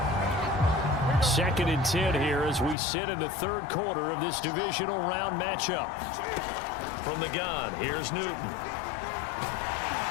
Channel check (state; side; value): drops out; right; at 2.8 s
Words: 2nd and 10 here as we sit in the 3rd quarter of this divisional round matchup. From the gun, here's Newton.